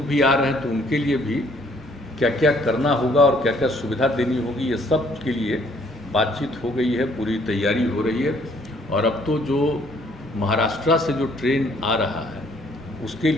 भी आ रहे हैं। तो उनके लिए भी क्या क्या करना होगा और क्या क्या सुविधा देनी होगी, ये सब के लिए बातचीत हो गई है, पूरी तैयारी हो रही है। और अब तो जो महाराष्ट्र से जो ट्रेन आ रहा है, उसके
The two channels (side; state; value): both; normal; correlation 0.63